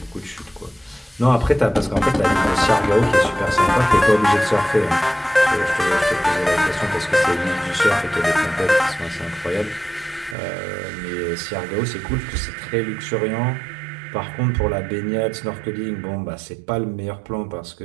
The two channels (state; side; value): drops out; left; at 10.4 s